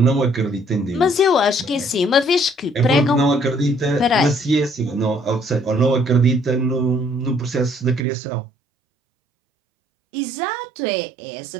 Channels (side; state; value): left; drops out; at 8.0 s